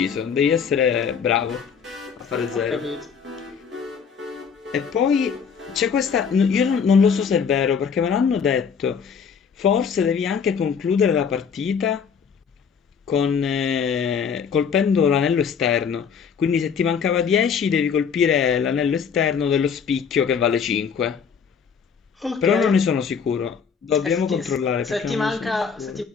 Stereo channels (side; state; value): right; quieter; 6.6 dB